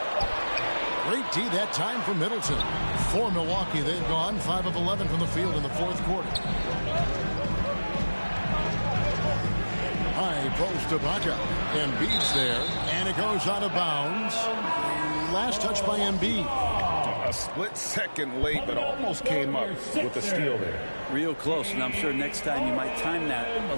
Great D that time for Middleton. For Milwaukee, they've gone 5 of 11 from the field in the fourth quarter. High post to Baca. Embiid's there, and it goes out of bounds. Last touch by Embiid. A split second late, but almost came up with a steal there. Real close, and I'm sure next time you might time that a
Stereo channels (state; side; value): inverted; both; correlation -1.00